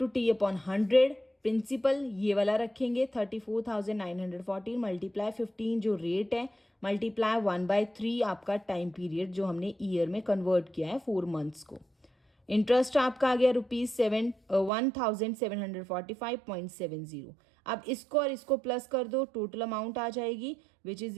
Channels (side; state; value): left; drops out; at 14.7 s